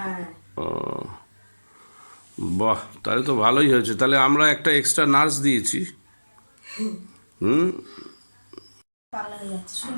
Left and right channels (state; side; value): inverted; both; correlation -1.00